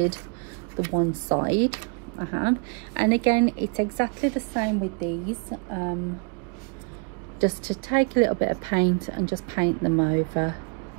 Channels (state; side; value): quieter; left; 35.9 dB